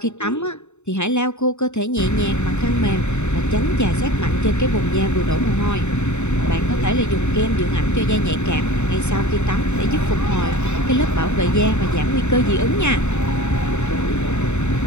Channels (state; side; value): late; right; 0.82 ms